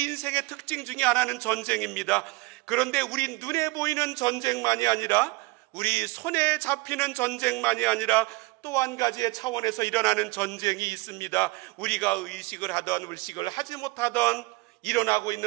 인생의 특징 중에 하나는 전쟁입니다. 그런데 우리 눈에 보이는 전쟁만이 아니라, 우리 손에 잡히는 전쟁만이 아니라 또 한 가지의 차원에서 일어나는 전쟁이 있습니다. 우리가 의식을 하던 의식을 하지 못하던 일어나고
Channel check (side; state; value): left; quieter; 24.2 dB